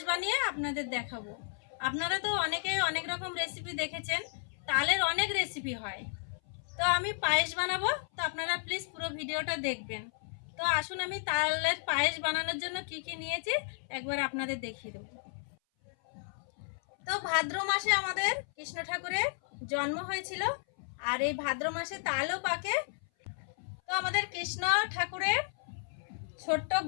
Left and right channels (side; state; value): right; silent; 56 dB below the other